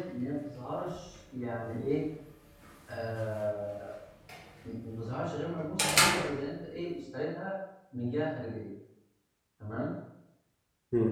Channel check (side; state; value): both; identical; correlation 1.00